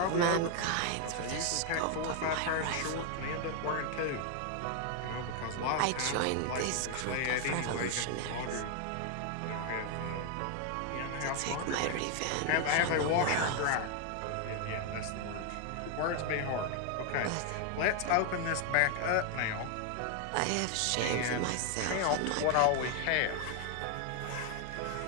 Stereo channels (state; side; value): different; both; correlation 0.00